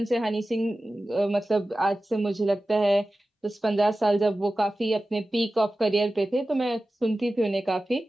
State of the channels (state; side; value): normal; both; correlation 0.95